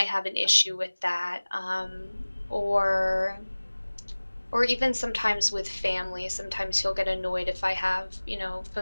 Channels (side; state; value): both; inverted; correlation -1.00